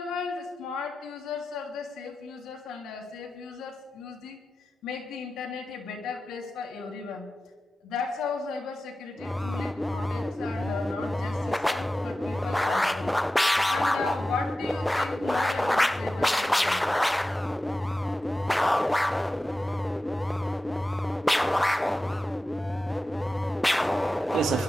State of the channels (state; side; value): normal; both; correlation 0.94